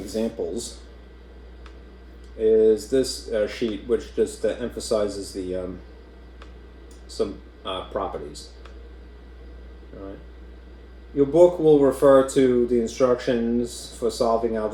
is this sheet, which just emphasizes the some properties. All right. Your book will refer to the instructions for solving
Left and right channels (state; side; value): identical; both; correlation 1.00